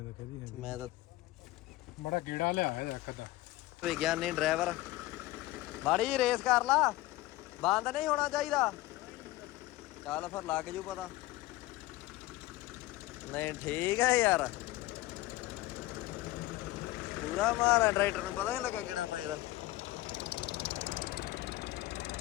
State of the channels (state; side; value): quieter; right; 17.7 dB